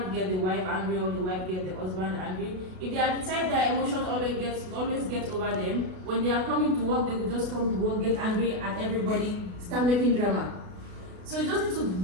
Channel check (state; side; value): late; left; 32 ms